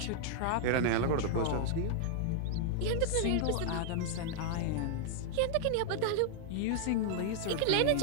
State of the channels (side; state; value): both; different; correlation -0.01